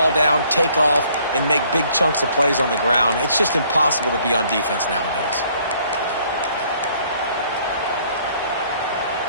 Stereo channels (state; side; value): inverted; both; correlation -0.62